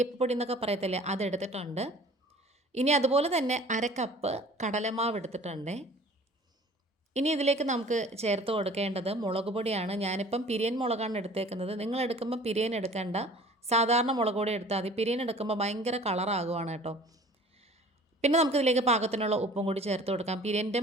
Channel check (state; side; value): normal; both; correlation 0.48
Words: എന്നൊക്കെ പറയത്തില്ലേ, അതെടുത്തിട്ടുണ്ട്. ഇനി അതുപോലെ തന്നെ 1/2 കപ്പ് കടലമാവ് എടുത്തിട്ടുണ്ട്. ഇനി ഇതിലേക്ക് നമുക്ക് ചേർത്ത് കൊടുക്കേണ്ടത് മുളക് പൊടിയാണ്. ഞാനിപ്പം പിരിയൻ മുളകാണ് എടുത്തേക്കുന്നത്. നിങ്ങൾ എടുക്കുമ്പോൾ പിരിയൻ എടുക്കേണ്ട, സാധാരണ മുളക് പൊടി എടുത്താൽ മതി. പിരിയൻ എടുക്കുമ്പോൾ ഭയങ്കര കളറാകുവാണ് കേട്ടോ. പിന്നെ നമുക്കിതിലേക്ക് പാകത്തിനുള്ള ഉപ്പും കൂടി ചേർത്ത് കൊടുക്കാം. പിരിയൻ്റെ